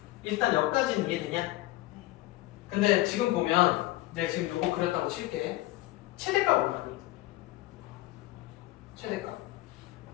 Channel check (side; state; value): right; quieter; 17.8 dB